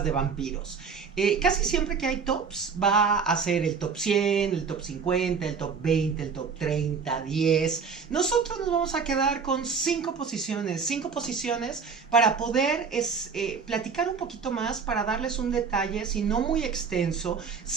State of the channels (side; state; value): left; quieter; 5.6 dB